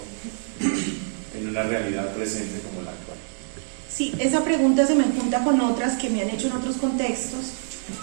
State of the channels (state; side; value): silent; left; 62 dB below the other